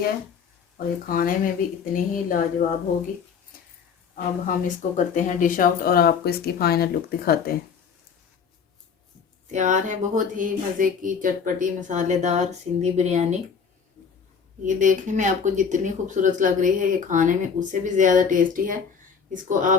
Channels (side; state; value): right; quieter; 6.3 dB